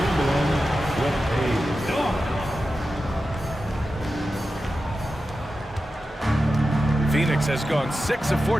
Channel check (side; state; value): both; normal; correlation 0.92